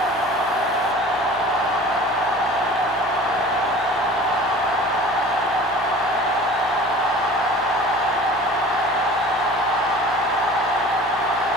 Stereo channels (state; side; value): normal; both; correlation 0.43